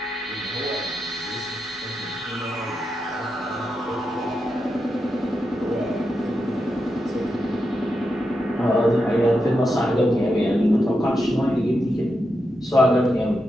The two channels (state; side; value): normal; both; correlation 0.86